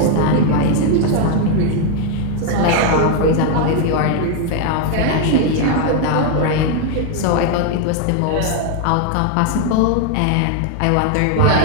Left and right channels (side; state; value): both; different; correlation 0.00